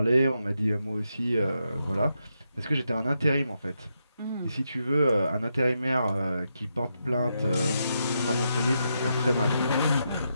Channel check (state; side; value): inverted; both; correlation -0.83